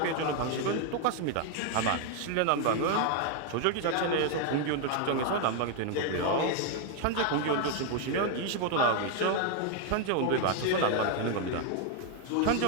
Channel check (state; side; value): different; both; correlation 0.01